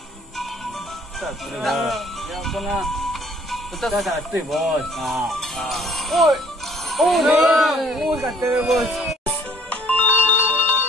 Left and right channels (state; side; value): normal; both; correlation 0.58